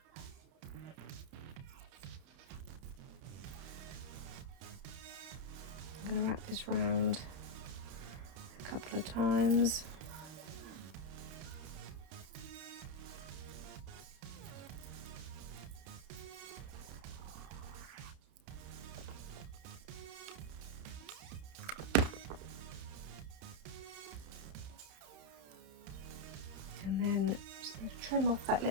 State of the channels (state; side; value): late; left; 31 ms